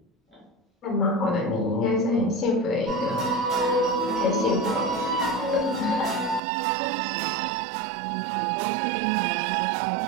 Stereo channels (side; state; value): left; drops out; at 6.4 s